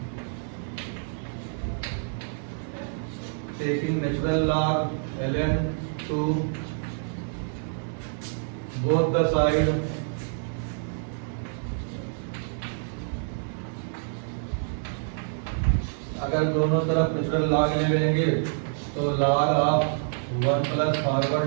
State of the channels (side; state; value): left; silent; 60 dB below the other